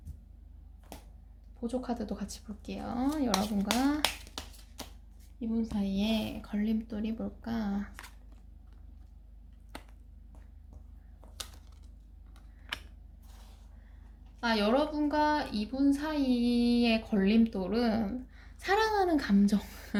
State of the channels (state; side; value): identical; both; correlation 1.00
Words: 보조 카드도 같이 볼게요. 여러분과 이분 사이에 걸림돌이 뭘까? 여러분과 이분 사이의 걸림돌은 사랑하는 감정.